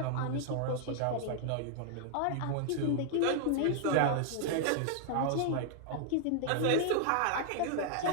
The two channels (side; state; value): both; different; correlation 0.00